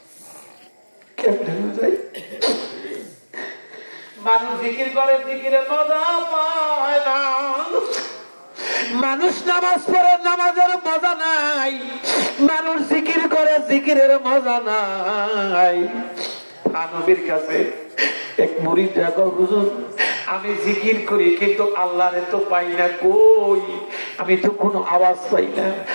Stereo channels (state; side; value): inverted; both; correlation -1.00